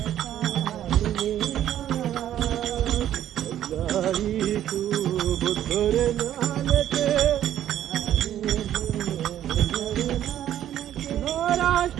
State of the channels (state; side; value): quieter; left; 11.5 dB